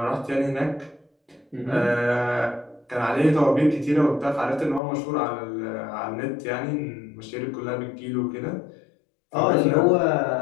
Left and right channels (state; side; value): drops out; right; at 4.8 s